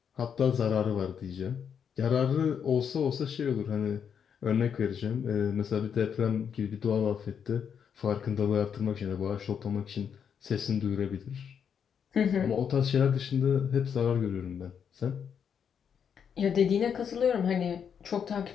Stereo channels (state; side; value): quieter; right; 7.5 dB